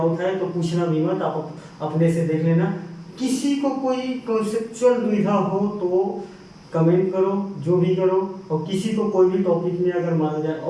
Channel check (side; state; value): both; identical; correlation 1.00